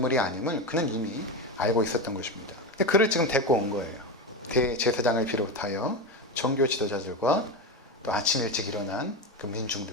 아님을 그는 이미 알고 있었던 것입니다. 근데 그를 지금 데리고 온 거예요. 대제사장을 비롯하여 종교 지도자들과 또 아침 일찍 일어난 그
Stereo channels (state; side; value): normal; both; correlation 0.17